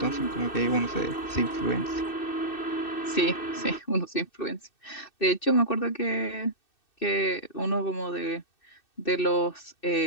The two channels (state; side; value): late; right; 2.6 ms